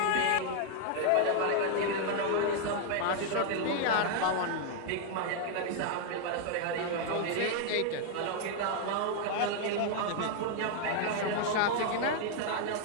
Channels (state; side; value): different; both; correlation 0.00